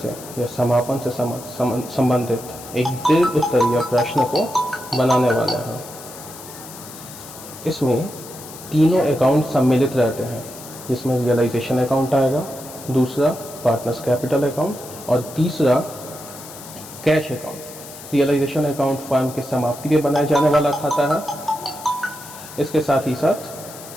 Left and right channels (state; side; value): noise; left; hiss, 15 dB below the sound